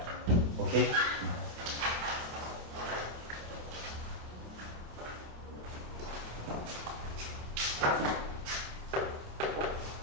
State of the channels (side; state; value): left; late; 27 ms